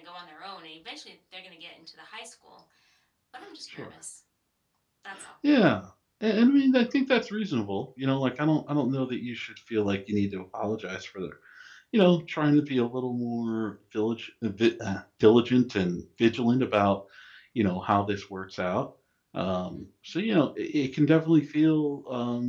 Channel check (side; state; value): both; identical; correlation 1.00